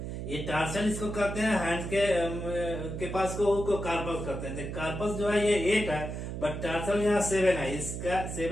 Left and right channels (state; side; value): noise; right; hum, 6 dB below the sound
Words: ये टार्सल इसको कहते हैं, हैंड के पास को कार्पस कहते हैं। कार्पस जो है ये 8 है, बट टार्सल यहाँ 7 है, इसका